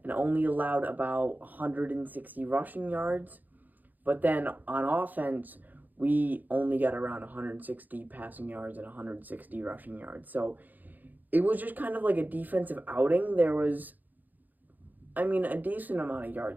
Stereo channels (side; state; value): left; late; 0.084 ms